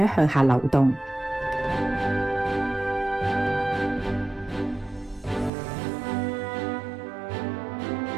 向下流動。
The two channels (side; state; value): left; drops out; at 5.5 s